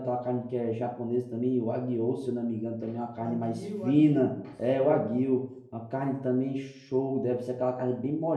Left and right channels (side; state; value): both; identical; correlation 1.00